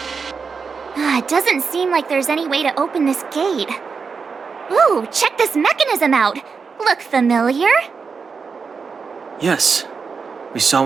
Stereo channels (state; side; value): quieter; left; 5.3 dB